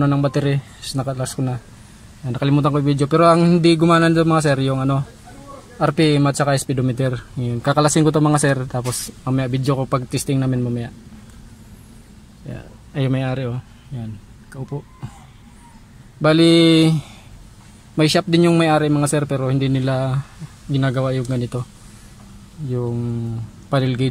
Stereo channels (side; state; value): both; identical; correlation 1.00